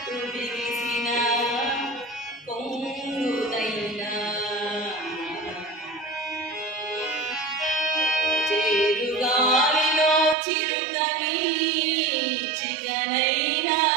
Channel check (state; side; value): drops out; left; at 10.4 s